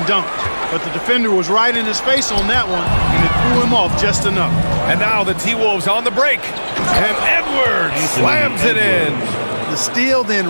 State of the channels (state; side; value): inverted; both; correlation -1.00